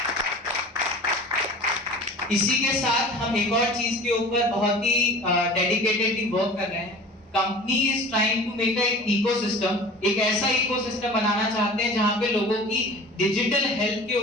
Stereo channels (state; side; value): normal; both; correlation 0.40